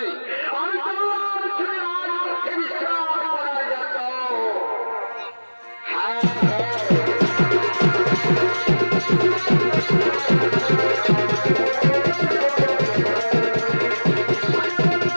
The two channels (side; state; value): both; inverted; correlation -1.00